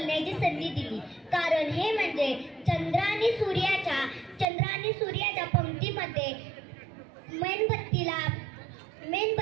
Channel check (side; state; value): left; drops out; at 4.5 s